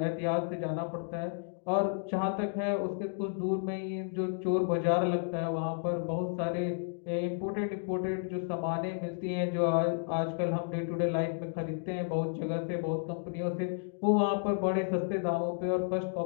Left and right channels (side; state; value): right; silent; digital silence